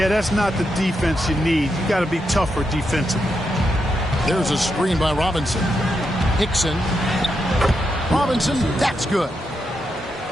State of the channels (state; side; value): normal; both; correlation 0.84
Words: that's not the defense you need. You got to be tougher defensively. There's a screen by Robinson. Hickson. Robinson, that's good.